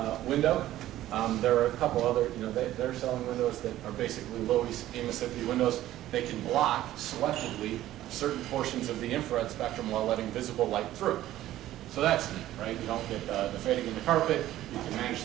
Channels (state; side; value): quieter; left; 14.0 dB